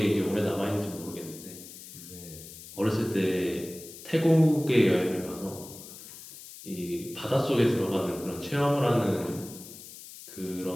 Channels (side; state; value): left; noise; hiss, 15 dB below the sound